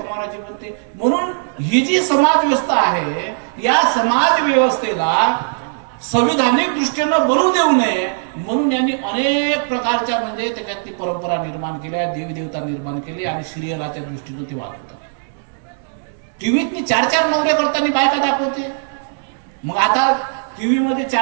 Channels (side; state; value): left; silent; digital silence